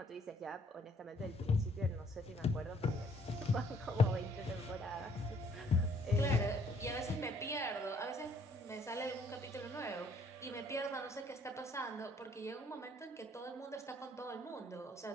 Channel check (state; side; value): normal; both; correlation 0.63